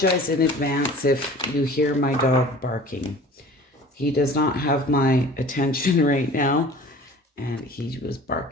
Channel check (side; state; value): both; normal; correlation 0.44